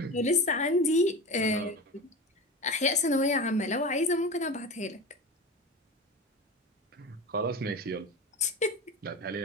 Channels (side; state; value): both; normal; correlation 0.28